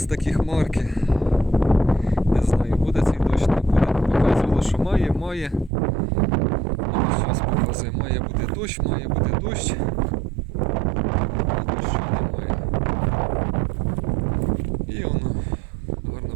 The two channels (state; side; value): drops out; left; at 5.7 s